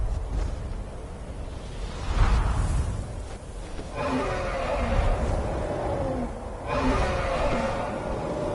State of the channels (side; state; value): both; identical; correlation 1.00